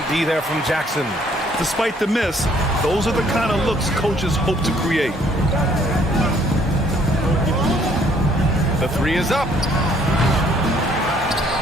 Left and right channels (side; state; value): both; normal; correlation 0.63